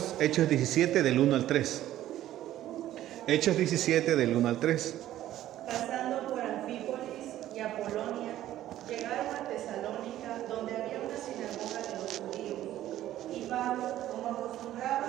Hechos 17 del 1 al 3. Hechos 17 del 1 al 3. Pasando por Anfípolis y Apolonia, llegaron a Tesalónica, donde había una sinagoga de los judíos. Y Pablo, como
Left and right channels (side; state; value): left; quieter; 13.3 dB